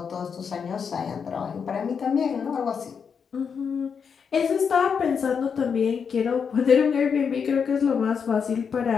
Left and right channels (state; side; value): quieter; right; 6.5 dB